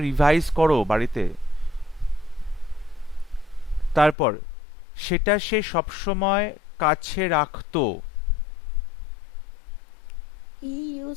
রিভাইজ করো বাড়িতে। তারপর সেটা সে সবসময় কাছে রাখতো। He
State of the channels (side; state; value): right; drops out; at 4.2 s